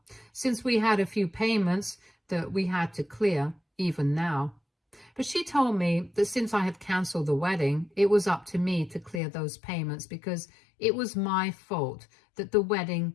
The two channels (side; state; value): right; drops out; at 9.2 s